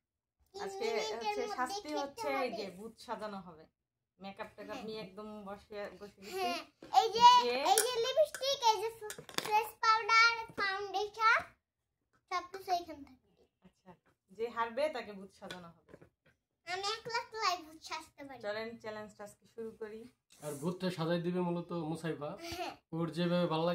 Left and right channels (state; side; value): identical; both; correlation 1.00